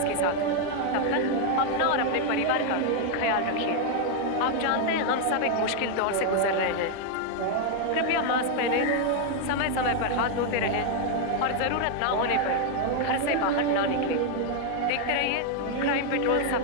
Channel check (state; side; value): different; both; correlation 0.00